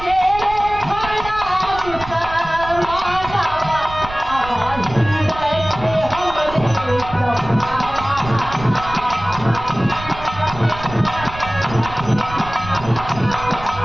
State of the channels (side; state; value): right; noise; rumble, 13 dB below the sound